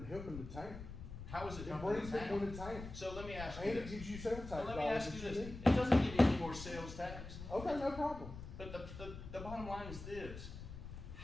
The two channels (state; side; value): noise; left; rumble, 10 dB below the sound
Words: helping the town? How is it It helping brings the people town? to town. So let me ask you And it this. gives you sales tax So let me dollars ask you that this. you need. It doesn't give you any more sales tax. Okay, no problem. But the bottom line is this: